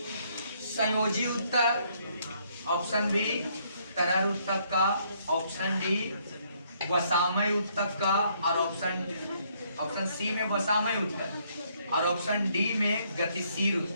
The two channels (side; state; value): both; inverted; correlation -0.69